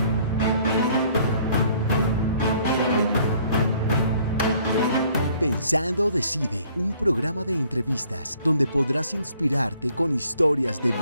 Pensando Decide, un programa de entrevistas donde podrás inspirarte con historias de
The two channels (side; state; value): both; inverted; correlation -0.60